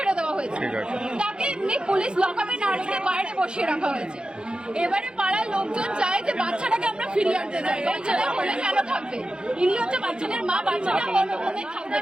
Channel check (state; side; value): late; left; 0.050 ms